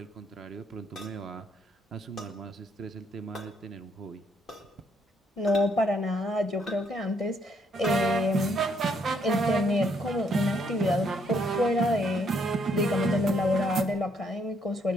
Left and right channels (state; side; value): normal; both; correlation 0.71